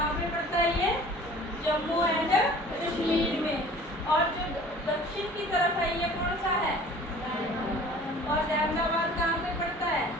कश्मीर में। और जो दक्षिण की तरफ है ये कौन सा है? और अहमदाबाद कहाँ पे पड़ता है?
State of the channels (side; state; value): both; normal; correlation 0.47